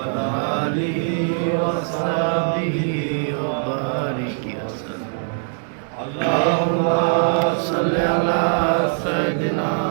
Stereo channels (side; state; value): left; silent; 65 dB below the other